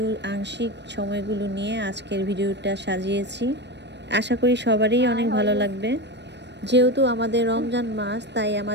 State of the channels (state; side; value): late; left; 0.50 ms